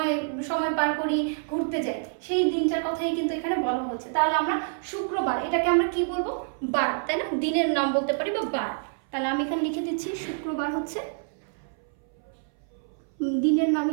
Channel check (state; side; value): silent; left; 60 dB below the other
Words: সময় পার করি, ঘুরতে যাই, সেই দিনটার কথাই কিন্তু এখানে বলা হচ্ছে। তাহলে আমরা শুক্রবার, এটাকে আমরা কি বলবো? বার, তাই না? দিনের নাম বলতে পারি বা বার। তাহলে আমি এখানে লিখে দিচ্ছি শুক্রবার হচ্ছে দিনের